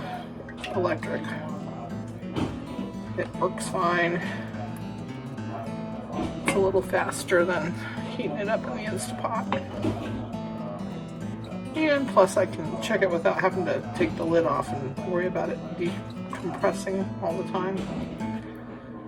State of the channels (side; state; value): both; identical; correlation 1.00